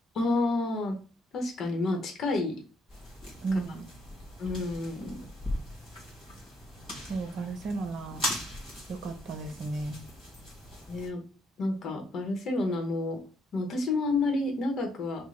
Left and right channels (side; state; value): both; normal; correlation 0.72